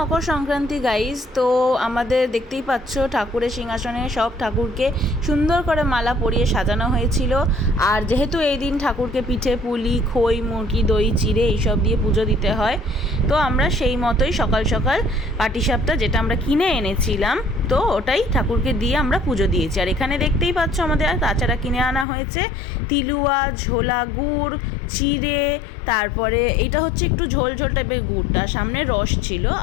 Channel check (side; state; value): right; drops out; at 22.1 s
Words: Sankranti guys. তো আমাদের দেখতেই পাচ্ছ ঠাকুরের সিংহাসনে সব ঠাকুরকে সুন্দর করে মালা পরিয়ে সাজানো হয়েছিল। আর যেহেতু এই দিন ঠাকুরকে পিঠে পুলি খই মুরগি দই চিড়ে এইসব দিয়ে পুজো দিতে হয়, তো আমরা সেই মতোই সকাল সকাল পাটিসাপটা যেটা আমরা কিনে এনেছিলাম, তো ওটাই ঠাকুরকে দিয়ে আমরা পুজো দিয়েছি। আর এখানে দেখতেই পাচ্ছ আমাদের তাছাড়া কিনে আনা হয়েছে তিলুয়া, ঝোলা গুড়, চিড়ে, তারপরে এইটা হচ্ছে একটু ঝোল ঝোল টাইপের গুড়টা, সামনে রস ছিল,